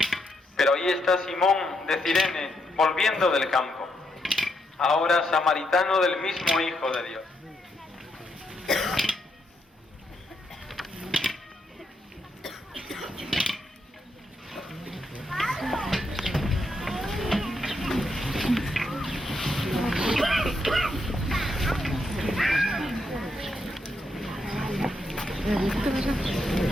Pero ahí está Simón de Cirene, volviendo del campo, ahora samaritano del mismo Hijo de Dios.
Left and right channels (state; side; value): normal; both; correlation 0.79